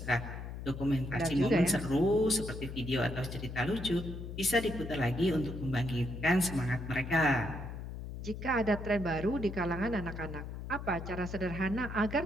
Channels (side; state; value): left; noise; hum, 8 dB below the sound